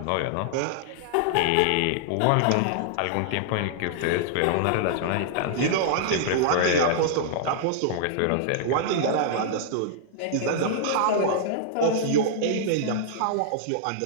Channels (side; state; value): both; different; correlation -0.01